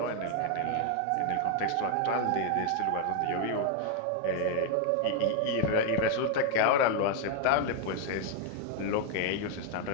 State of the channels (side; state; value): both; different; correlation 0.00